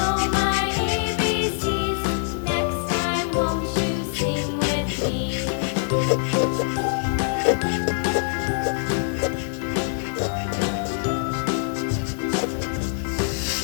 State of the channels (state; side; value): silent; right; digital silence